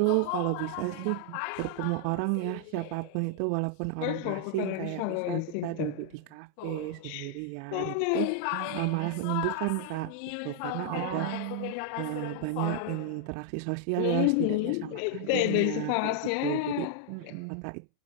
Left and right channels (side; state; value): both; different; correlation 0.00